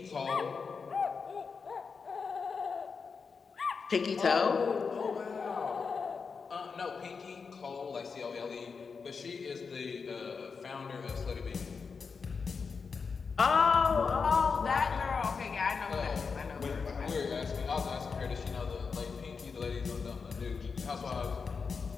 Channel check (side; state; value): right; quieter; 5.3 dB